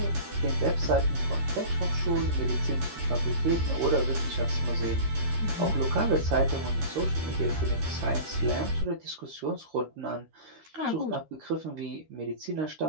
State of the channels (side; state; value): left; late; 13 ms